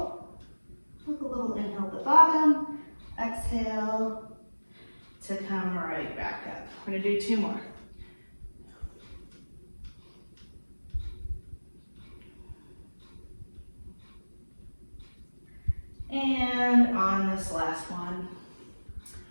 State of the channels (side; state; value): both; inverted; correlation -1.00